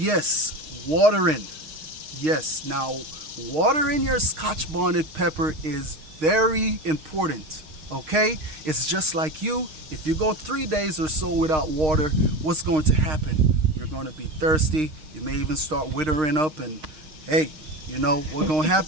watering. Yes, now watering your Scotch bonnet pepper is very important. Okay, it's just like you. If you go 3 days or so without water, what's going to happen? You're going to be thirsty. You may even start withering up, and hey, you know what's going to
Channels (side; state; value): left; late; 6.5 ms